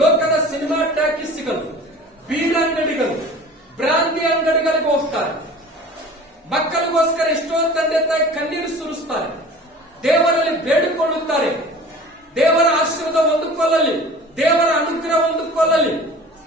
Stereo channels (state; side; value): normal; both; correlation 0.42